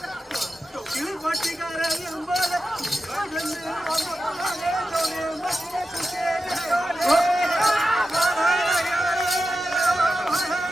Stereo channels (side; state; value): both; normal; correlation 0.91